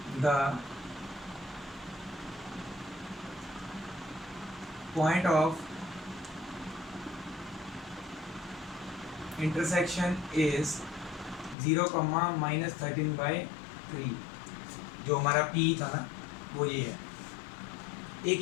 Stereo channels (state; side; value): drops out; right; at 11.6 s